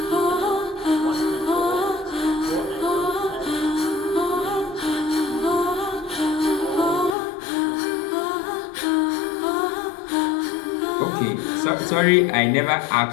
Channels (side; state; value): right; drops out; at 7.2 s